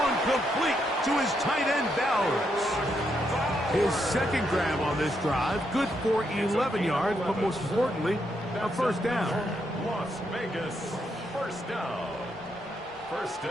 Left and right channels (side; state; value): both; normal; correlation 0.79